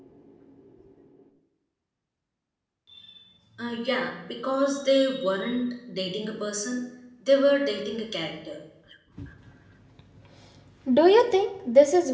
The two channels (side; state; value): both; identical; correlation 1.00